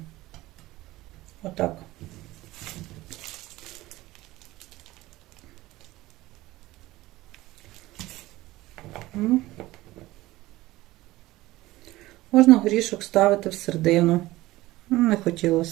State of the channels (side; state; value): left; quieter; 17.9 dB